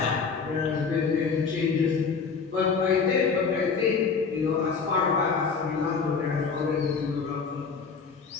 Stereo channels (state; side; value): quieter; right; 5.3 dB